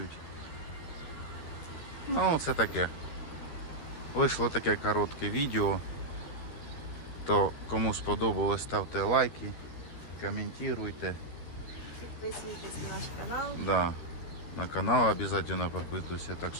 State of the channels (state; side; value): late; right; 13 ms